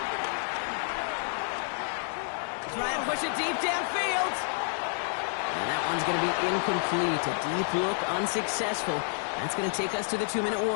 Try and push it deep downfield. And that one's going to be incomplete. A deep look, unsuccessful. That's going to take us to the 2-minute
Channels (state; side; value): silent; right; digital silence